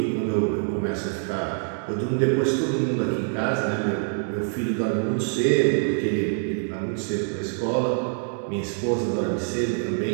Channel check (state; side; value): silent; left; 60 dB below the other